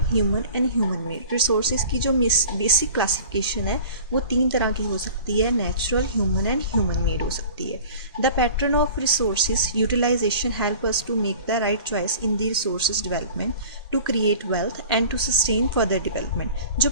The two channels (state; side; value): inverted; both; correlation -0.42